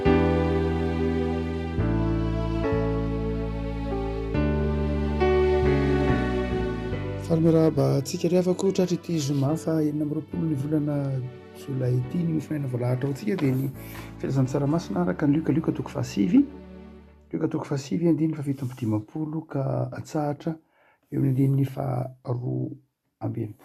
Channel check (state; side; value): identical; both; correlation 1.00